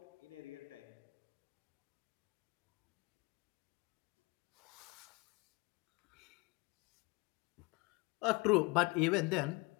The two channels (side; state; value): right; quieter; 25.4 dB